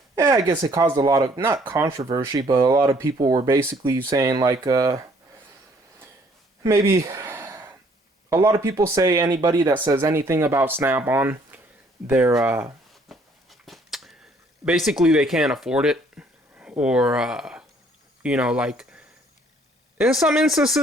I guess it caused a lot of, not controversy, but a lot of people were basically saying, like, maybe a lot of people say anybody that says anything about Snap-on, they're, basically they can't afford it, or, like, in some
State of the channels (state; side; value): normal; both; correlation 0.62